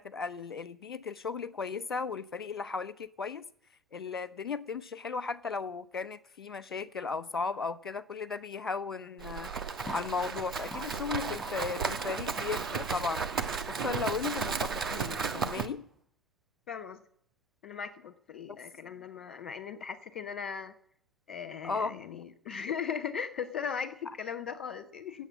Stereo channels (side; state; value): both; normal; correlation 0.41